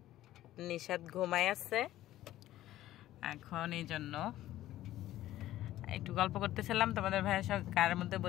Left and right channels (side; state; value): right; quieter; 14.3 dB